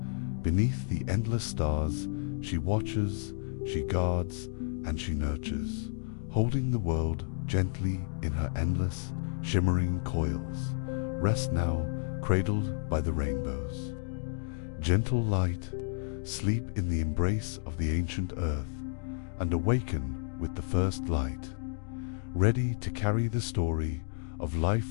beneath the endless stars, she watches, she guards, and she nurtures, holding the world gently in her endless, shimmering coils. Rest now, cradled by the rainbows. Gentle light, sleep in the embrace of the ancient earth, and awaken with the first light, ready to carry the story of life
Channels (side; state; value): right; silent; 57 dB below the other